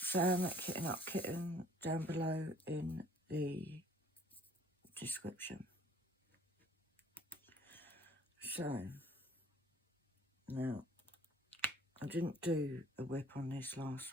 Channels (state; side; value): normal; both; correlation 0.56